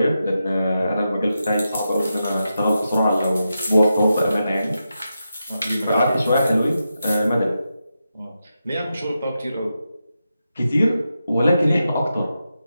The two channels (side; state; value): both; inverted; correlation -0.88